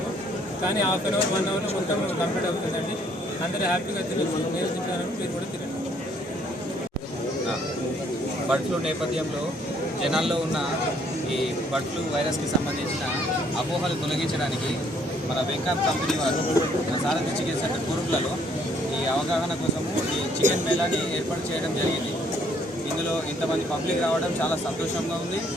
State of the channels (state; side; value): normal; both; correlation 0.65